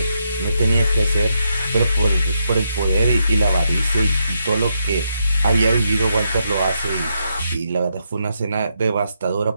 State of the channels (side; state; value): both; inverted; correlation -0.80